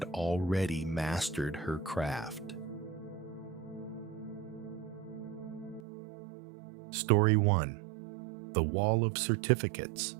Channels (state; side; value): drops out; left; at 5.8 s